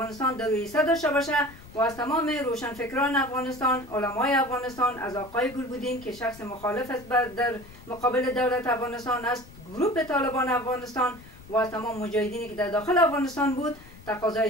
در رئیسه داشته باشه و از تمام روشنفکران افغانستان، علمای افغانستان، از آقای گلبودین که شخص مخالف است در مقابل دولت افغانستان است، گروه طالبان افغانستان و از تمام مجاهدینی که در داخل افغانستان بود،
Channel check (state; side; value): noise; left; rumble, 20 dB below the sound